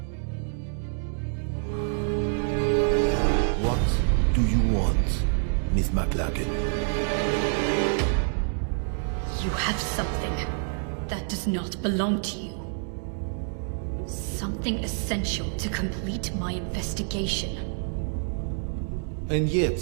what do you want, Miss McLachlan? You have something that does not belong to you. Something essential to complete my investigation. And yet,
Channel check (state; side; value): silent; left; 57 dB below the other